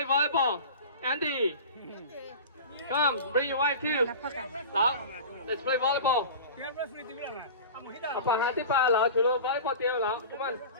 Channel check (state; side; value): inverted; both; correlation -0.34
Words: volleyball. Andy. Come, bring your wife too. Lão, let's play volleyball. Apa hati pa lão chulo volleyball team lão. Come on.